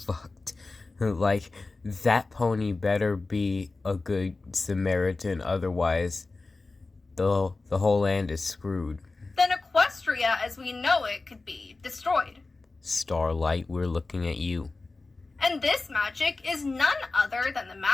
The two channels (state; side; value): quieter; right; 3.5 dB